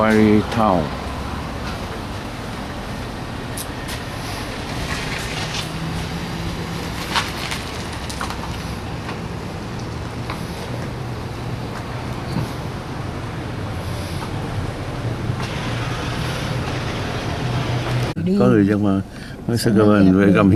Town. Có người dân mà mới sẽ come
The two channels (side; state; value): both; identical; correlation 1.00